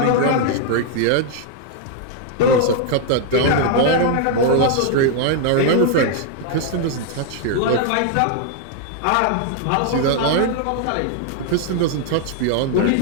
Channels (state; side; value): different; both; correlation 0.00